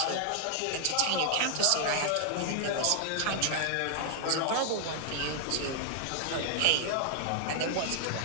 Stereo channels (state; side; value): different; both; correlation 0.00